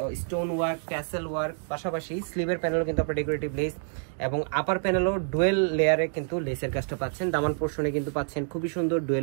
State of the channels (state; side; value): silent; left; 60 dB below the other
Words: স্টোন ওয়ার্ক, ট্যাসেল ওয়ার্ক, পাশাপাশি স্লিভের প্যানেলও কিন্তু আপনার ডেকোরেটিভ লেস এবং আপার প্যানেলও ডুয়েল লেয়ারে কিন্তু লেসের কাজটা পাচ্ছেন। দামান পোর্শনে কিন্তু পাচ্ছেন খুবই সুন্দর